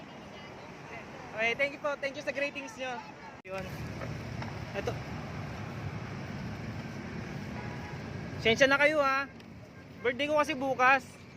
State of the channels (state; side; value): identical; both; correlation 1.00